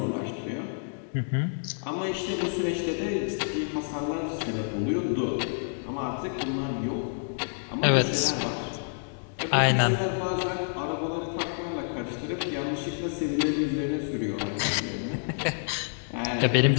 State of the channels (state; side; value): silent; right; digital silence